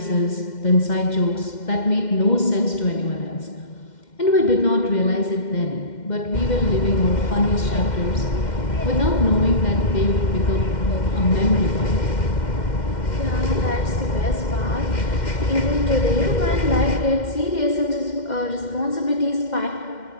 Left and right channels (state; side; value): late; right; 2.1 ms